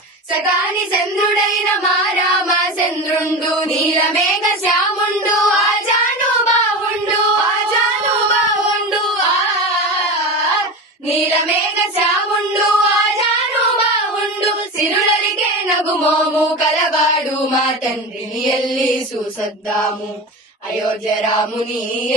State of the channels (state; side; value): normal; both; correlation 0.26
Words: సగాని చంద్రుడైన మా రామచంద్రుండు నీలమేఘ శ్యాముండు ఆజాను బావుండు నీలమేఘ శ్యాముండు ఆజాను బావుండు సిరులరికే నగుమోము కలవాడు మా తండ్రిని ఎల్లి చూసొద్దాము అయోధ్య రాముని